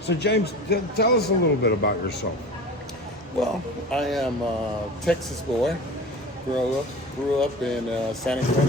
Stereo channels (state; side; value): normal; both; correlation 0.34